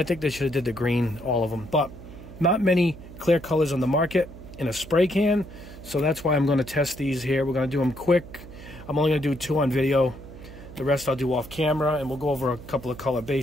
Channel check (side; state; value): right; noise; hum, 16 dB below the sound